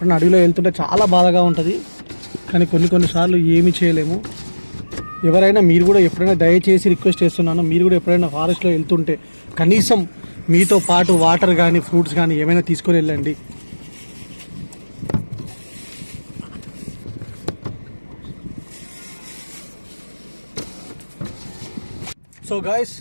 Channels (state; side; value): inverted; both; correlation -1.00